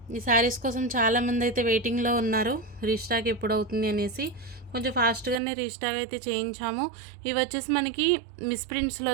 ఈ శారీస్ కోసం చాలామంది అయితే వెయిటింగ్లో ఉన్నారు, రీస్టాక్ ఎప్పుడు అవుతుంది అనేసి. కొంచెం ఫాస్ట్గానే రీస్టాక్ అయితే చేయించాము. ఇవి వచ్చేసి మనకి మిస్ప్రింట్స్లో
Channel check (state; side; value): drops out; left; at 5.4 s